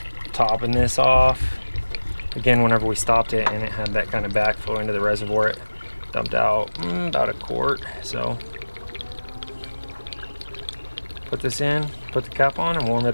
topping this off. Again, whenever we stopped it and it had that kind of backflow into the reservoir, it dumped out about a quart. So put this in, put the cap on and warm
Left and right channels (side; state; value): both; inverted; correlation -1.00